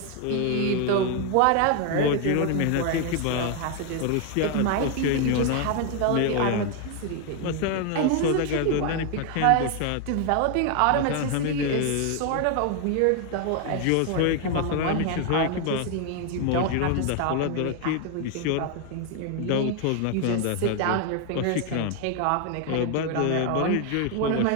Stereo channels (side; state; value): both; different; correlation 0.01